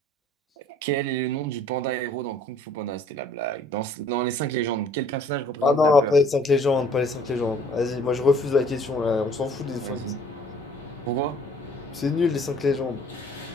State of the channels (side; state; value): both; normal; correlation 0.56